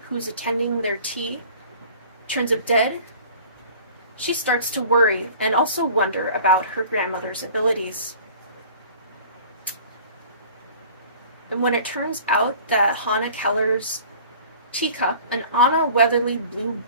who's attending their tea, turns up dead, she starts to worry and also wonder about her grandmother's abilities. And when it turns out that Hannah Keller's teacup, an Anna Weatherly Blue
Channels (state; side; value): inverted; both; correlation -0.47